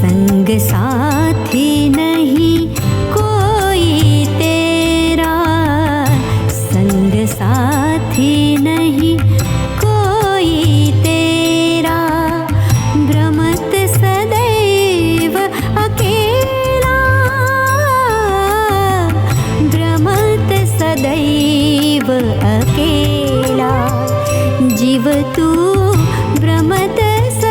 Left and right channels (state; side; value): identical; both; correlation 1.00